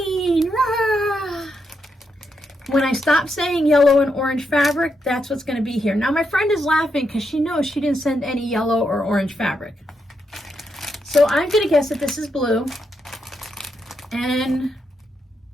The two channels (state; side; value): normal; both; correlation 0.82